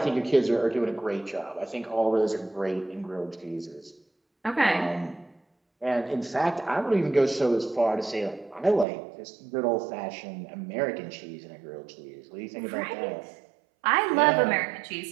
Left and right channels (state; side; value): drops out; left; at 8.8 s